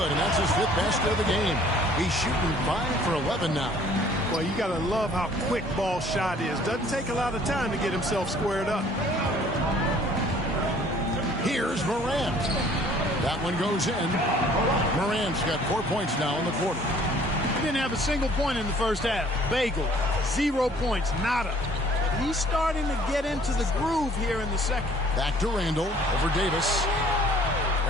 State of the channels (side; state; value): both; normal; correlation 0.56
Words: and that's his fifth basket of the game. He's shooting 5 for 11 now. Well, you got to love how quick Ball's shot is. Doesn't take a lot of time to get himself squared up. Here's Morant. That one goes in. Morant's got 4 points now in the quarter. He didn't have a single point in the first half. Bagel, 0 points, nada. He's starting to get into the groove here in the second. Back to Randall over Davis.